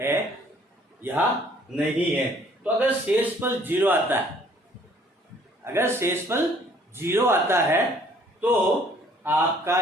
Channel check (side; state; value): both; normal; correlation 0.59